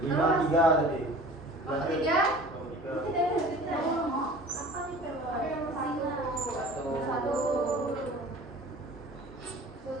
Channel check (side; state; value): both; normal; correlation 0.43